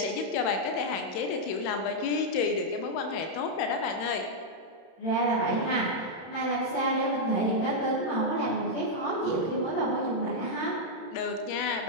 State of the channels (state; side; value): late; right; 31 ms